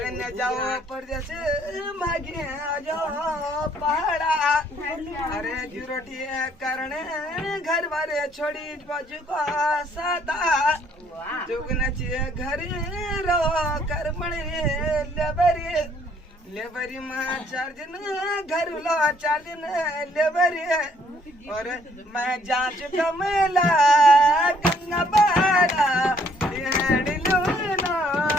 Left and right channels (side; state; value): both; normal; correlation 0.64